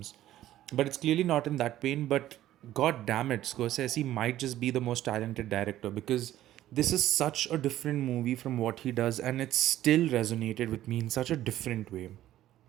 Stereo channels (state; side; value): quieter; left; 13.5 dB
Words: But it's clearly not in that vein. But god damn it, Scorsese might just be the most talented director because this is such a different movie from what he does, and it still resonated with me in such a different way.